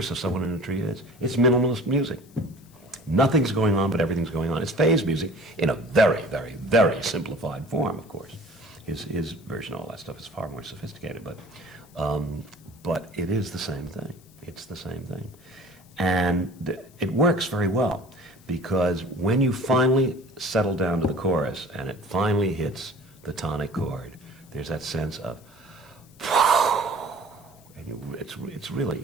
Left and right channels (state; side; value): noise; left; hiss, 28 dB below the sound